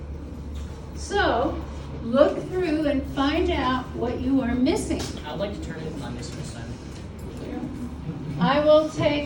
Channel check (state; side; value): identical; both; correlation 1.00